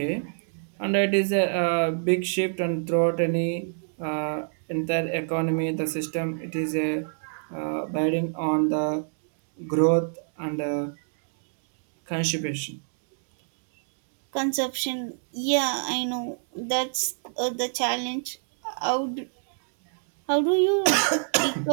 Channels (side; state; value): left; silent; digital silence